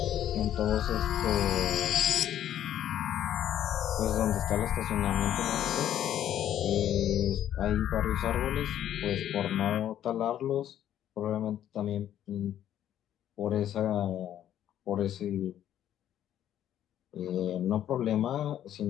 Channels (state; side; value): quieter; right; 11.1 dB